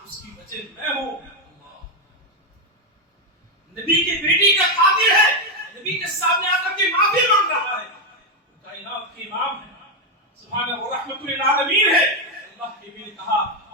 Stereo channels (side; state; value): both; normal; correlation 0.05